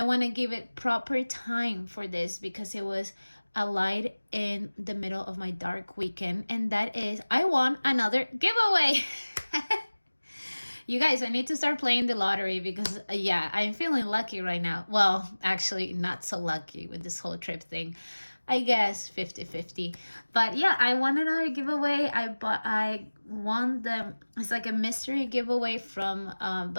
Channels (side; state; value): both; inverted; correlation -1.00